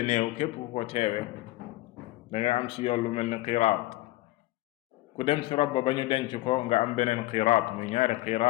néew képp ku ko teewe danga am ci yool lu mel ni qiraat ku dem ci rob ba ñu denc ko nga am beneen qiraat muy ñaari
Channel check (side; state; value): right; quieter; 18.6 dB